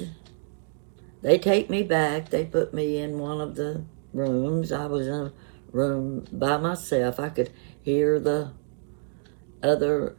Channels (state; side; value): silent; left; digital silence